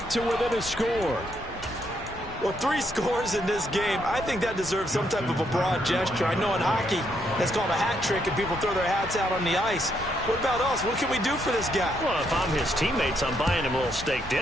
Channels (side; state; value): both; normal; correlation 0.75